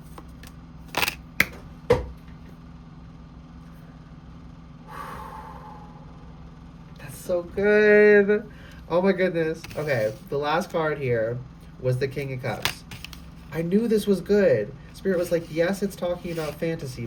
That's so good. Oh my goodness. Okay, the last card here was the King of Cups. I knew this was good. Spirit was like, yes, it's talking about fantasy,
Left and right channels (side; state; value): both; identical; correlation 1.00